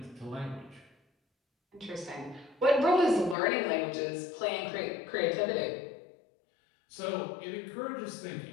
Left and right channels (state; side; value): drops out; right; at 3.4 s